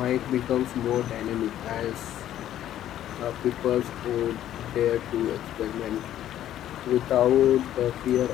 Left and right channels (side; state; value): right; quieter; 12.0 dB